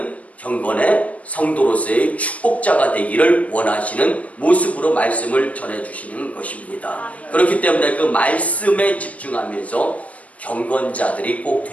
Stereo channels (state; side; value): late; right; 0.067 ms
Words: 경건의 성도로서의 축복자가 되기를 원하시는 모습으로 말씀을 전해주시는 것입니다. 그렇기 때문에 그 말씀에 집중하면서 경건자들이 꼭